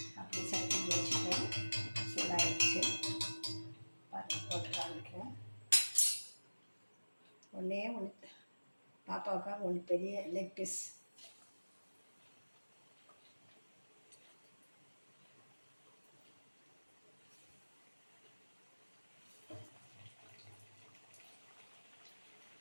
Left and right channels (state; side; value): inverted; both; correlation -1.00